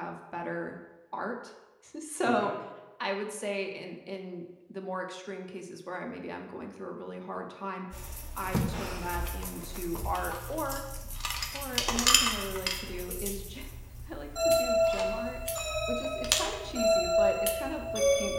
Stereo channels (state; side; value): identical; both; correlation 1.00